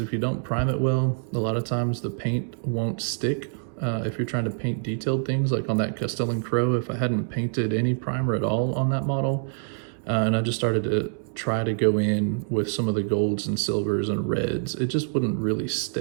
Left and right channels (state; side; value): silent; left; digital silence